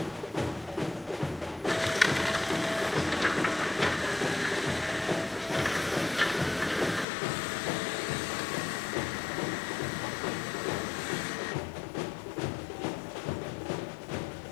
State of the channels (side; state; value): right; drops out; at 7.1 s